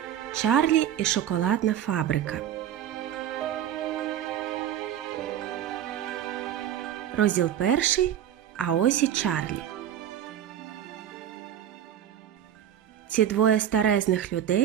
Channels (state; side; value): quieter; left; 10.5 dB